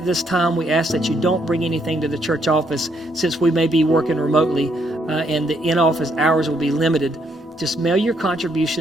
this time, we ask that you don't bring anything to the church office since we may be working remotely and the in-office hours will be limited. Just mail your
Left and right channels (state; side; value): normal; both; correlation 0.73